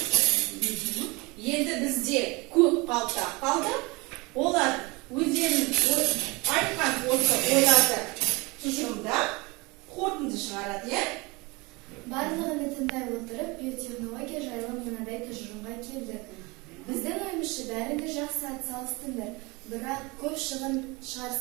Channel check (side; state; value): left; quieter; 25.6 dB